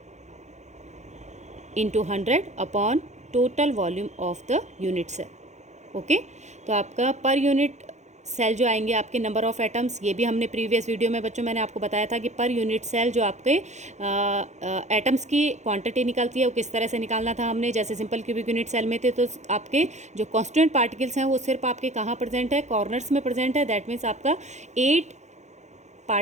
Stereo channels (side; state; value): left; late; 0.33 ms